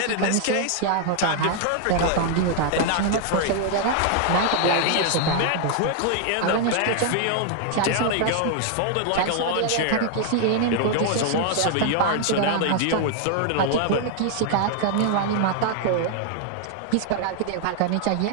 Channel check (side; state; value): both; different; correlation 0.00